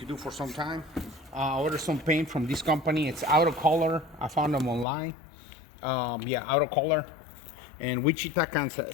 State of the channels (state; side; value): drops out; right; at 4.9 s